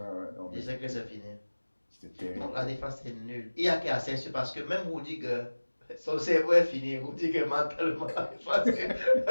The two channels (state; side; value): inverted; both; correlation -1.00